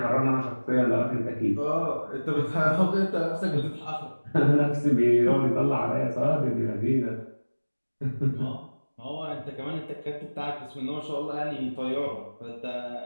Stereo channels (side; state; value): both; inverted; correlation -1.00